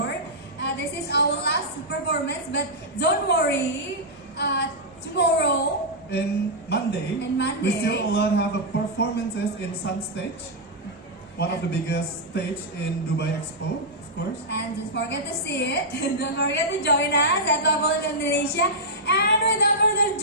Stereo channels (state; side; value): normal; both; correlation -0.08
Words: this is our last performance. But don't worry, tomorrow And Monday, we still have a performances in Sun Stage, one of the biggest stage in Dubai Expo, of course. And don't forget to see it. Don't forget to join us at Level Indonesia. And without further